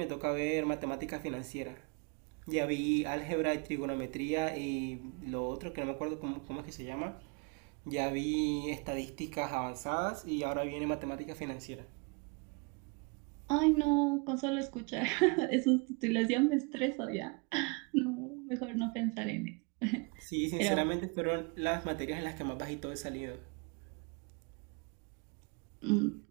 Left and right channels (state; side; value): quieter; left; 31.7 dB